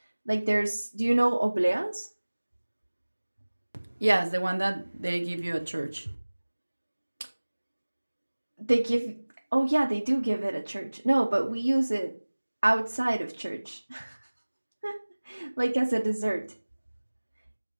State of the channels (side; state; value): both; inverted; correlation -1.00